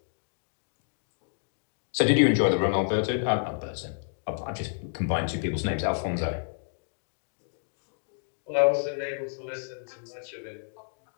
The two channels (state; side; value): silent; right; digital silence